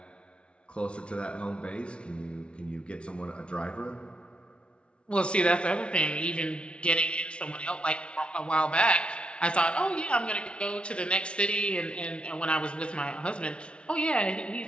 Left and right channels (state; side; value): late; right; 0.058 ms